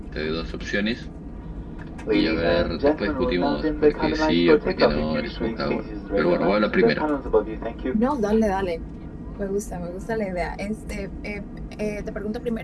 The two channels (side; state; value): both; identical; correlation 1.00